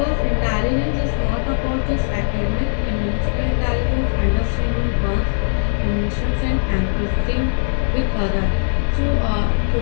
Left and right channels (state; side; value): silent; right; digital silence